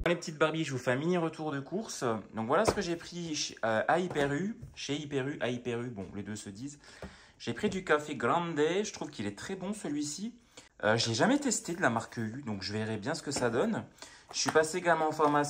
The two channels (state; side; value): identical; both; correlation 1.00